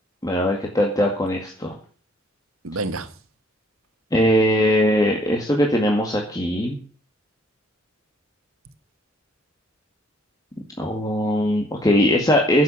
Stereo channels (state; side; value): normal; both; correlation 0.62